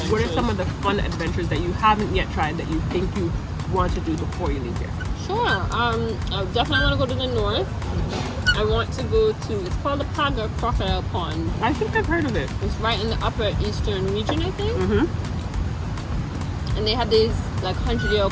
What are some of the fun adventures that you haven't yet tried that you think you want to do before you leave here? Sure. I definitely want to go to the north. I want to go to, it's called the Paga Crocodile Pond. I think I've heard of it. It's right in the upper eastern region, I think. And they have these like 100-year-old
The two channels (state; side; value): identical; both; correlation 1.00